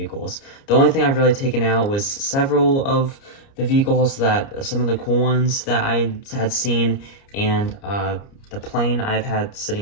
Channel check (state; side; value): late; right; 29 ms